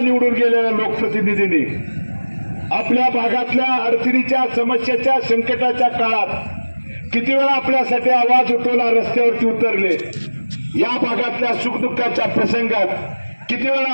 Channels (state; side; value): inverted; both; correlation -1.00